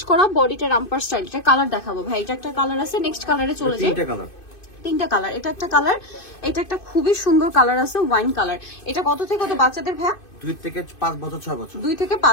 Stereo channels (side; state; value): right; late; 2.6 ms